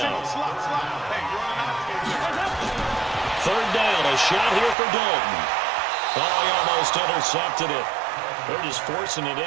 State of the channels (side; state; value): left; drops out; at 4.8 s